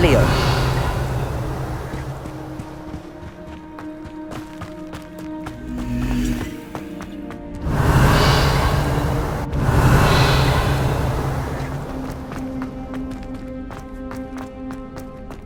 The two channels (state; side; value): identical; both; correlation 1.00